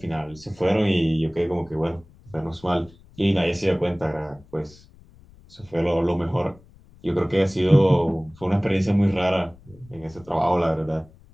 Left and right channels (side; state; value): left; noise; rumble, 25 dB below the sound